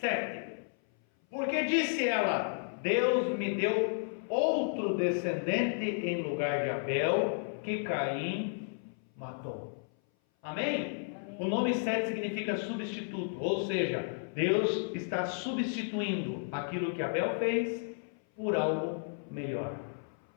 Porque disse ela: Deus me deu outro descendente em lugar de Abel, que Caim matou. Amém? O nome Sete significa substituto, ou seja, Deus está substituindo aquilo que Abel fez por algo melhor.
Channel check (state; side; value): silent; right; 56 dB below the other